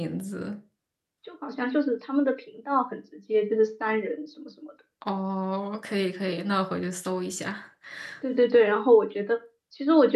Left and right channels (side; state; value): both; identical; correlation 1.00